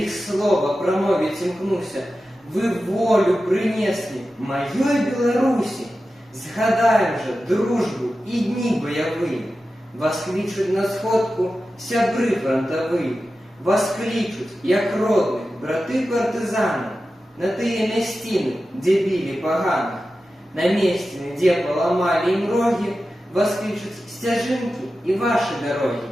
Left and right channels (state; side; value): normal; both; correlation 0.93